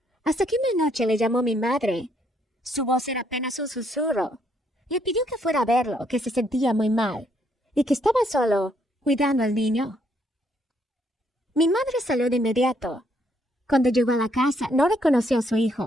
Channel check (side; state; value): both; normal; correlation 0.71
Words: hasta que una noche le llamó mi madre. Su voz era apenas un susurro. Le pidió que fuera a verlo, que se sentía muy mal y que estaba solo cuidando al niño. Mi madre salió de inmediato. Cuando llegó a la casa, no reconoció a su